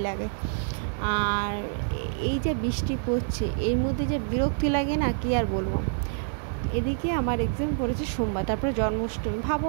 লাগে। আর এই যে বৃষ্টি পড়ছে, এর মধ্যে যে বিরক্তি লাগে না, কি আর বলবো। এদিকে আমার এক্সাম পড়েছে সোমবার, তারপরে জন্মাষ্টমী।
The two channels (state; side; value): silent; left; 59 dB below the other